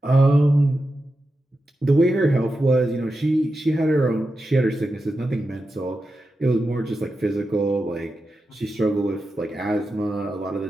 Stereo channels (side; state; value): both; normal; correlation 0.90